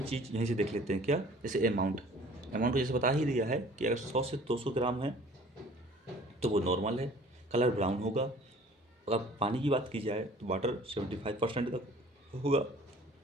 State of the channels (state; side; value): normal; both; correlation 0.50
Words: चीज़ यहीं से देख लेते हैं क्या? जैसे अमाउंट तो जैसे बता ही दिया है कि अगर 100 से 200 ग्राम है तो वो नॉर्मल है, कलर ब्राउन होगा। अगर पानी की बात की जाए तो वाटर 75% तक होगा।